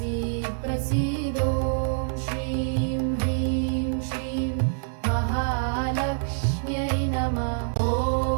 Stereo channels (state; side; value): silent; left; digital silence